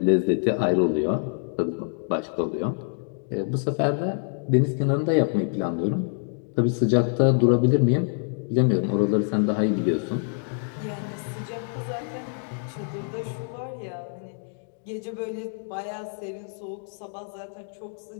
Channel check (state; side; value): silent; right; 58 dB below the other